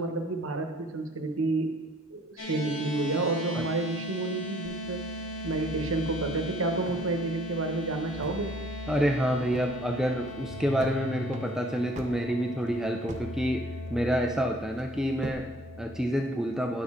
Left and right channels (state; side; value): normal; both; correlation 0.57